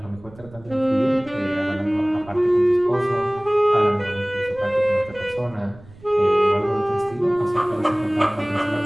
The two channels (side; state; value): right; noise; rumble, 22 dB below the sound